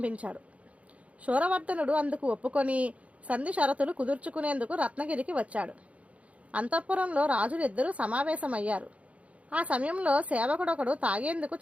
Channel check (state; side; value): late; left; 0.065 ms